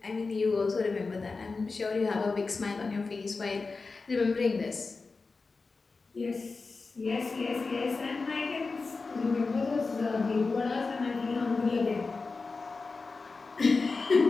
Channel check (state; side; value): quieter; right; 4.1 dB